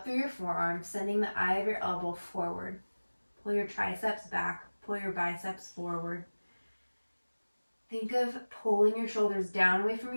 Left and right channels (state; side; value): inverted; both; correlation -1.00